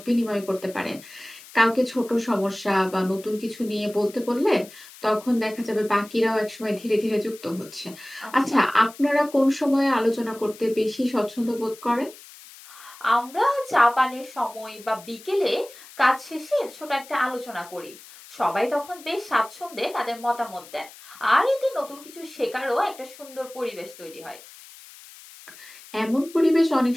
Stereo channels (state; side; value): noise; left; hiss, 19 dB below the sound